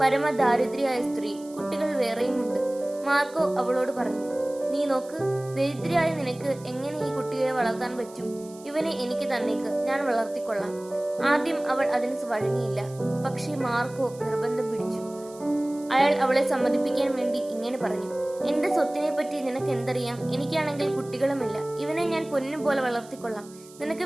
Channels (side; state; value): right; noise; hiss, 22 dB below the sound